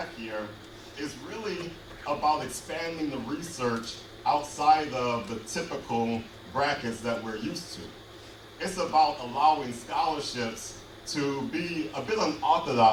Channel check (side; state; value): both; identical; correlation 1.00